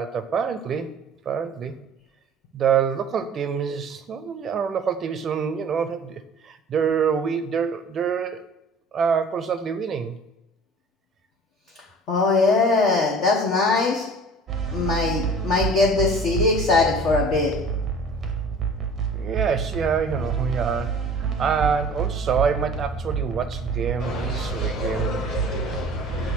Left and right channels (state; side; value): normal; both; correlation 0.45